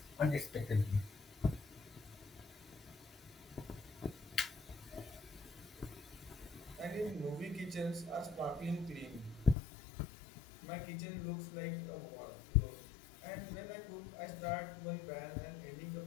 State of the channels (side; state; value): right; drops out; at 9.6 s